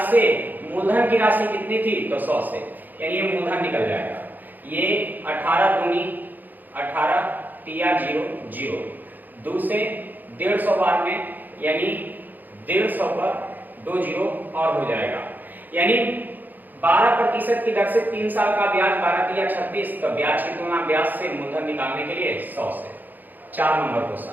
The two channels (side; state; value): left; late; 0.086 ms